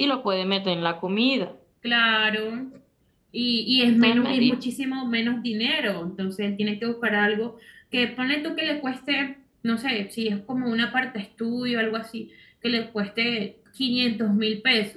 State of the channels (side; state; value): both; identical; correlation 1.00